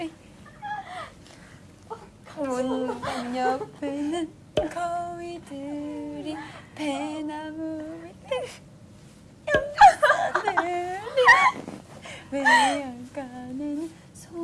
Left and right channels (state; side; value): identical; both; correlation 1.00